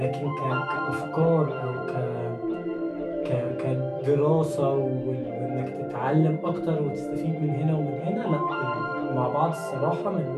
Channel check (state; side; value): identical; both; correlation 1.00